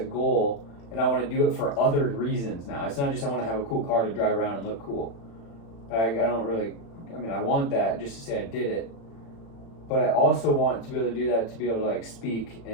and I want to do it for other reasons now. It's not just I want to have a cool car to drive around and look cool. I don't really. I mean, I want that just to say I did it. But I also want to be able to do that to be able to like speak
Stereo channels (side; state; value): right; late; 36 ms